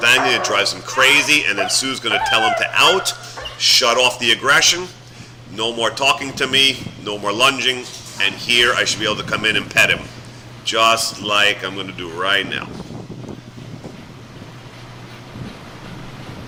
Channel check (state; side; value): identical; both; correlation 1.00